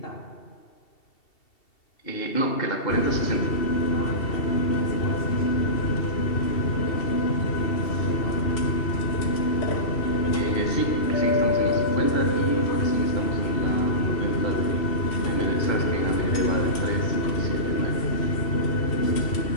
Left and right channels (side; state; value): right; late; 2.7 ms